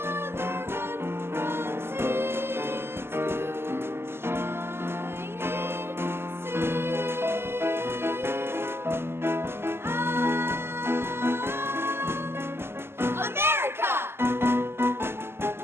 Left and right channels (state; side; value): late; left; 0.12 ms